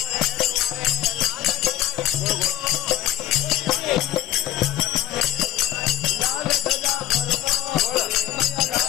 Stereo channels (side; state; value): right; quieter; 13.2 dB